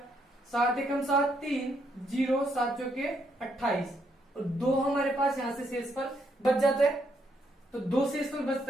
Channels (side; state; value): both; normal; correlation 0.75